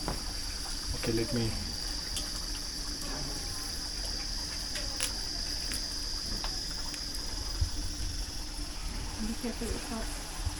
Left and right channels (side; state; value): both; identical; correlation 1.00